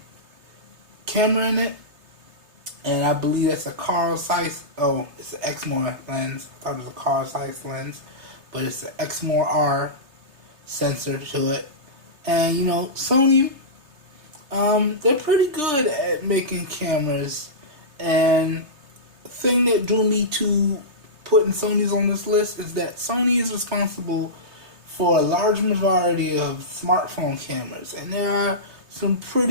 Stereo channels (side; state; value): left; late; 3.3 ms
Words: camera in it, and I believe that's a Carl Zeiss. Oh, it's an Exmor lens. I thought it was a Carl Zeiss lens, but it's an Exmor R sensor to it. And you know, Sony, they're pretty good at making cameras. And the thing that drew me to putting Sony's on this list is that Sony is responsible for a large majority of smartphone cameras, and there are some